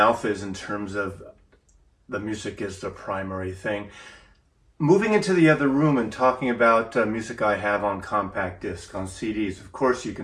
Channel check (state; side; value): identical; both; correlation 1.00